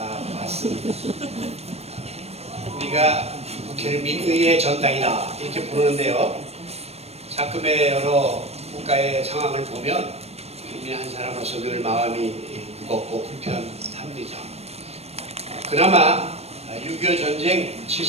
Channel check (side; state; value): left; late; 0.31 ms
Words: 우리가 국회를 민의의 전당이다 이렇게 부르는데요, 가끔의 여러 국가의 상황을 보면 국민 한 사람으로서 늘 마음이 무겁고 불편합니다. 그나마 6.25 전쟁